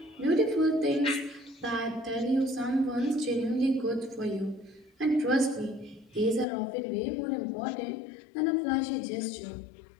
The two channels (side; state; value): right; drops out; at 6.5 s